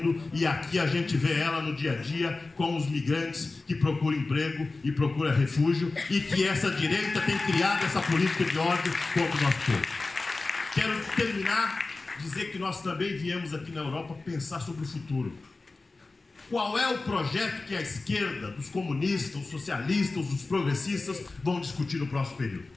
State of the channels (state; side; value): quieter; right; 3.5 dB